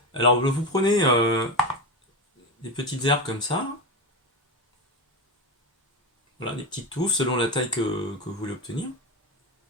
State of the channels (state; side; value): normal; both; correlation 0.18